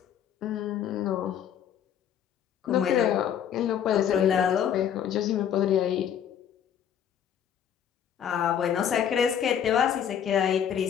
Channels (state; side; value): quieter; right; 9.1 dB